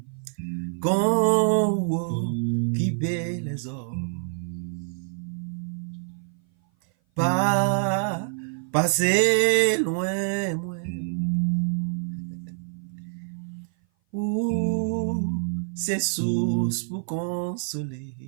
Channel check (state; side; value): silent; left; 57 dB below the other